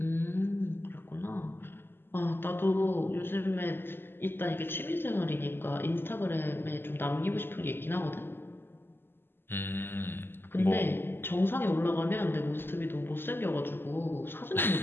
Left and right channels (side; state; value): right; late; 0.10 ms